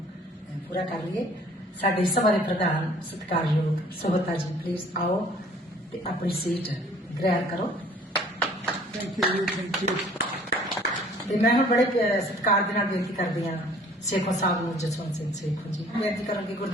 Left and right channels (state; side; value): normal; both; correlation 0.54